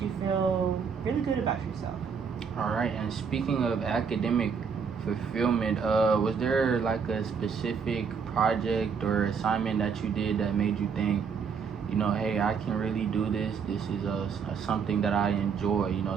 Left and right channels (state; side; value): quieter; left; 6.2 dB